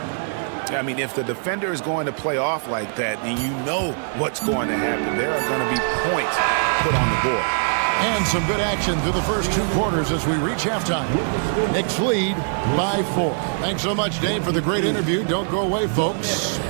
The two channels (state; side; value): silent; left; digital silence